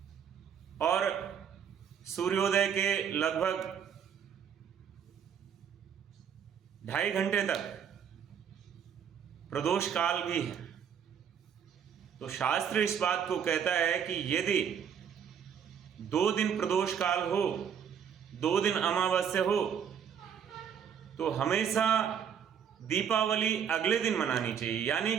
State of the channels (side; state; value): left; quieter; 8.0 dB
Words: और सूर्योदय के लगभग 2.5 घंटे तक प्रदोष काल भी है। तो शास्त्र इस बात को कहता है कि यदि 2 दिन प्रदोष काल हो, 2 दिन अमावस्या हो, तो हमेशा दीपावली अगले दिन मनानी चाहिए। यानी